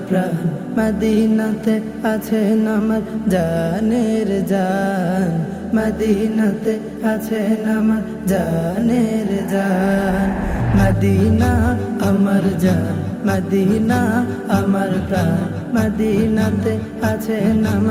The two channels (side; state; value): both; identical; correlation 1.00